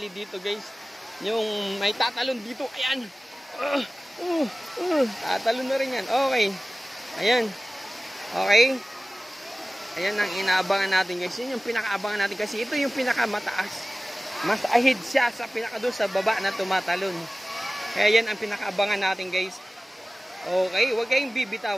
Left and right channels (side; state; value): both; normal; correlation 0.97